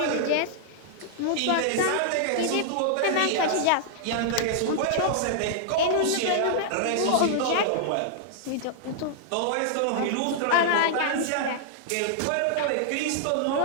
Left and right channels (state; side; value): different; both; correlation -0.01